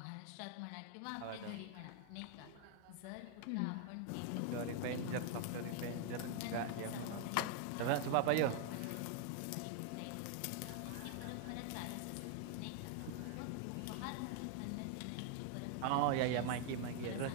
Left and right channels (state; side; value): different; both; correlation 0.00